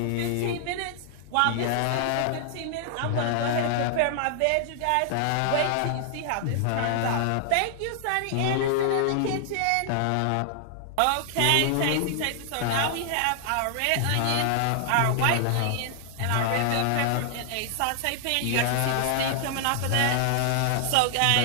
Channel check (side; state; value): both; different; correlation -0.01